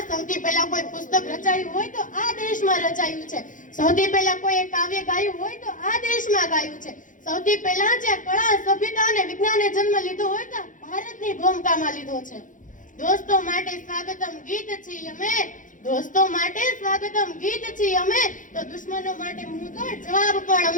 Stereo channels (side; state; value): right; late; 0.38 ms